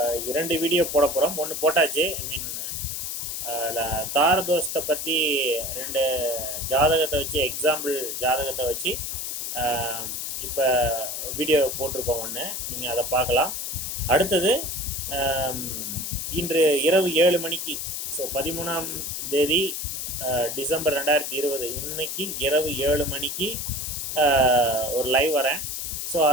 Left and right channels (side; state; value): left; noise; hiss, 4 dB below the sound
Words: 2 வீடியோ போட போகிறோம். ஒன்று போட்டாச்சு. தாரதோஷத்தை பற்றி 2 ஜாதகத்தை வச்சு, எக்ஸாம்பிள் ஜாதகத்தை வச்சு இப்போ வீடியோ போட்டிருக்கோம். ஒன்று நீங்கள் அதை பார்க்கலாம். அடுத்தது இன்று இரவு 7 மணிக்கு, ஸோ 13ஆம் தேதி டிசம்பர் 2020, இன்னைக்கு இரவு 7 மணிக்கு ஒரு லைவ் வரேன். ஸோ